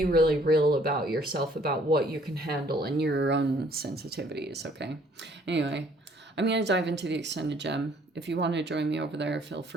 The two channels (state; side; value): normal; both; correlation 0.61